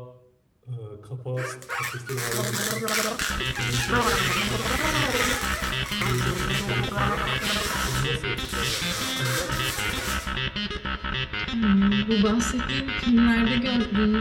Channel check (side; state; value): both; identical; correlation 1.00